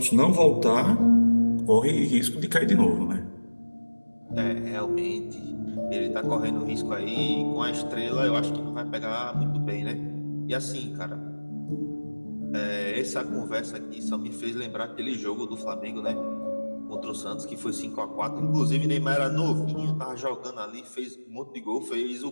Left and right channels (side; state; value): both; inverted; correlation -1.00